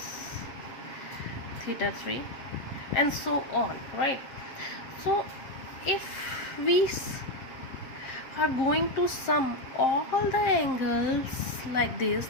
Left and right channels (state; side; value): late; right; 7.6 ms